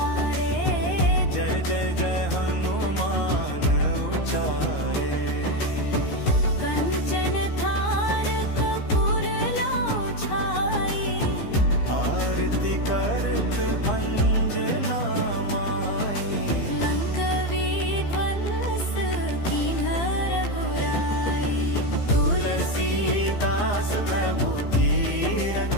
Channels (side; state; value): right; late; 15 ms